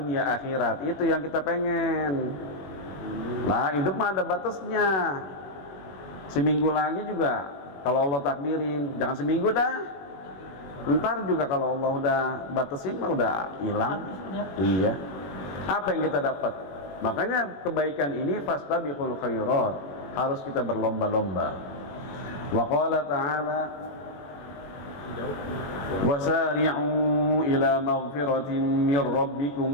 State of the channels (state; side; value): late; right; 21 ms